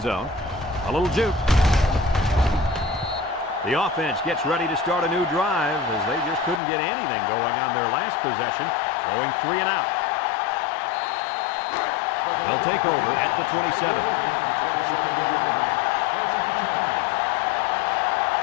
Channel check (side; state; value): right; drops out; at 6.6 s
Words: zone. A little juke. The offense gets ready to start a new drive as they just couldn't get anything going on their last possession, going 3 and out. They'll take over at the 27.